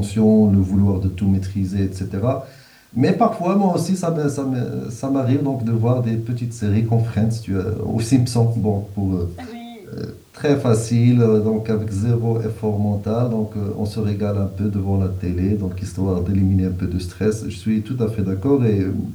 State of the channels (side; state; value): both; identical; correlation 1.00